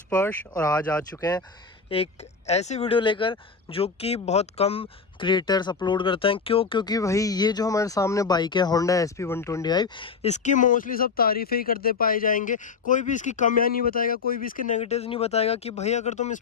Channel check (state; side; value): quieter; right; 5.1 dB